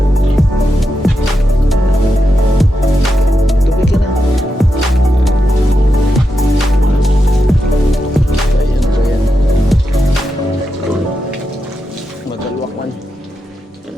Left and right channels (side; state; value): both; normal; correlation 0.87